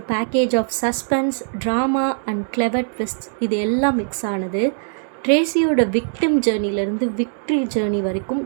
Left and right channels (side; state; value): left; silent; digital silence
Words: package of suspense, drama and clever twist இது எல்லாம் மிக்ஸ் ஆனது. ட்ரேசியோட விக்டிம் ஜேர்னிலேருந்து விக்ட்ரி ஜேர்னி வரைக்கும்